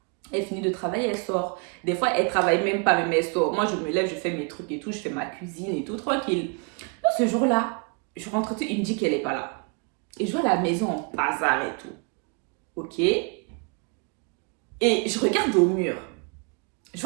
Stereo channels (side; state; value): left; quieter; 35.2 dB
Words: Elle finit de travailler, elle sort. Des fois, elle travaille même pas, mais elle sort. Moi, je me lève, je fais mes trucs et tout, je fais ma cuisine et tout, tranquille. Donc, ce jour-là, je rentre tout, il me dit qu'elle est pas là. Et je vois la maison en bazar et tout. Ok. Et je regarde au mur. Je